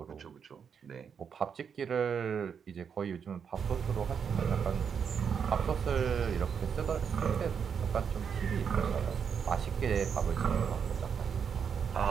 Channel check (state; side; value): quieter; left; 7.0 dB